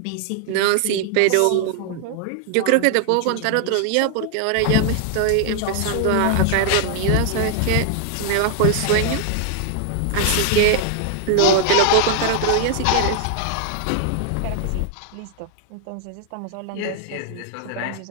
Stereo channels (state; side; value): different; both; correlation 0.00